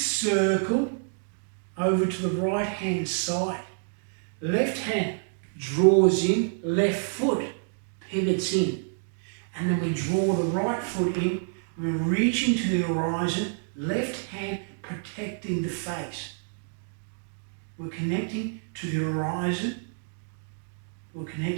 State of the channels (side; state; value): left; silent; digital silence